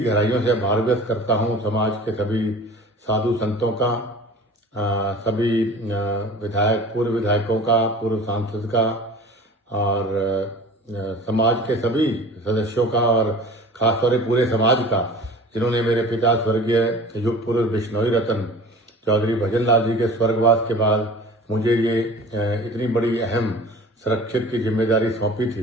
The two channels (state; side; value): normal; both; correlation 0.41